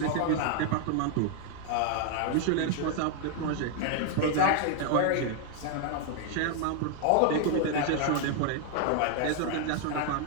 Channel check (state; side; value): different; both; correlation 0.00